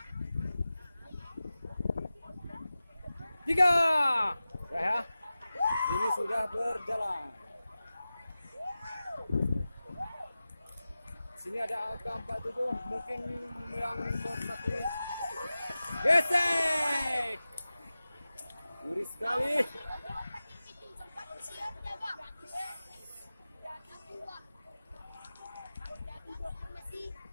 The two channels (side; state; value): both; inverted; correlation -0.96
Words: Tiga, ya. Ini sudah berjalan. Sini ada AK47, mungkin yang berarti gesek. Ngeri sekali.